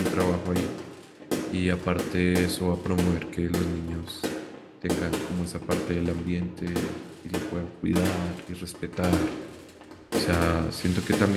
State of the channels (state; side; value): identical; both; correlation 1.00